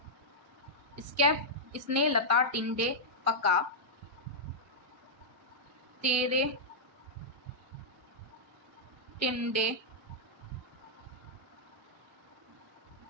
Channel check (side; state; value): both; normal; correlation -0.08